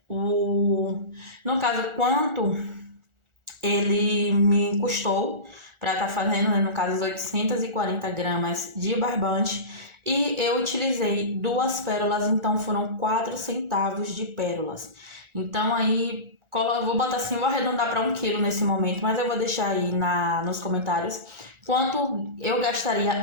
no caso, quanto ele me custou para estar fazendo, né, no caso, as 840 gramas de barbante. E eu utilizei 2 pérolas, então foram 4 centavos de pérolas. Então aí, eu vou botar assim, vou arredondar para 1 quilo nesse momento, mas eu vou deixar aí nos comentários quanto eu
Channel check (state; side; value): late; left; 1.4 ms